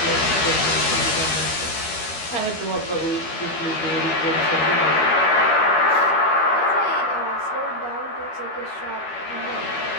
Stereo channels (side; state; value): right; late; 12 ms